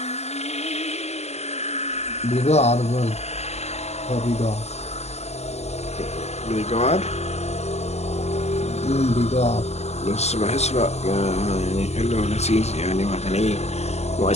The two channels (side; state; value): right; late; 0.31 ms